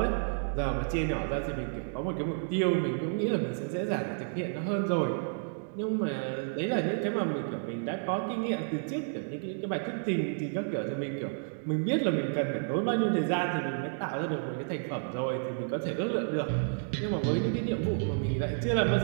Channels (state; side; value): silent; left; digital silence